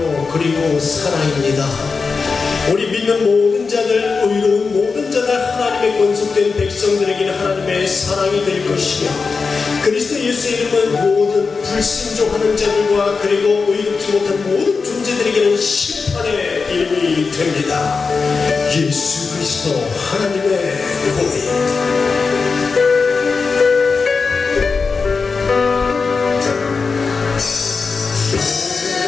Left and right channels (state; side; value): quieter; right; 4.7 dB